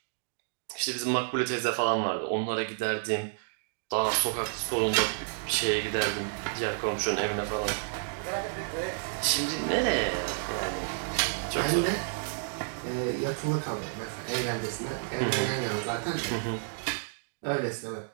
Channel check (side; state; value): left; silent; digital silence